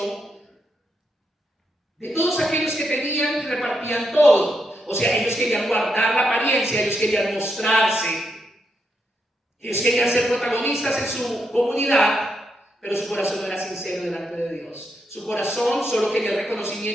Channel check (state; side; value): normal; both; correlation 0.81